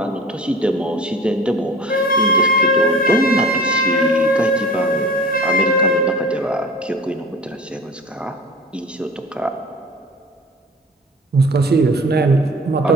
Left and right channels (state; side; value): normal; both; correlation 0.41